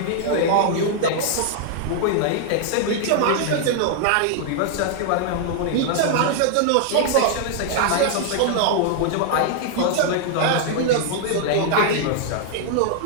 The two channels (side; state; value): both; different; correlation 0.00